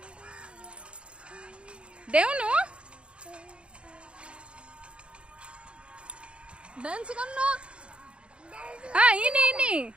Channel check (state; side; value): late; left; 0.057 ms